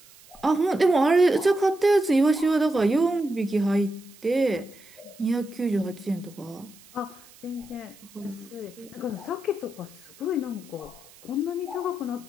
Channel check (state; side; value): noise; right; hiss, 24 dB below the sound